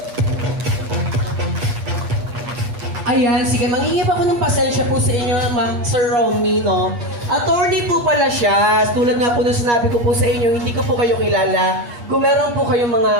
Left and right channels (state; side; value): late; left; 8.4 ms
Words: Ayan, sige, mangingip ako ng pasensya po sa inyo, Ma'am Sir Romy, no? Attorney po pala siya. Tulad nga po na sinabi ko po sa inyo, hindi ko po kayo kilala. Kung meron po kayong mga